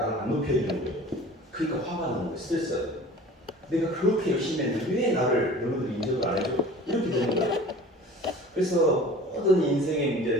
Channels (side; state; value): both; normal; correlation 0.42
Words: 안 높여주는 거예요. 그러니까 화가 나는 거예요. 스트레스가 돼요. 내가 그렇게 열심히 했는데 왜 나를 너희들이 인정을 안 해줘? 이렇게 되는 거예요. 그래서 모든 인생의